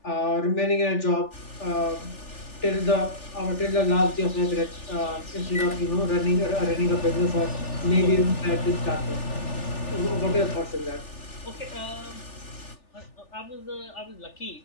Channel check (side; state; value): right; late; 3.4 ms